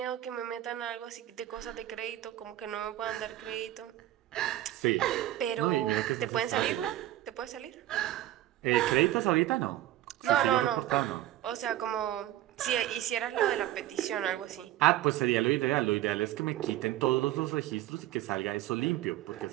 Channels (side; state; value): left; quieter; 14.2 dB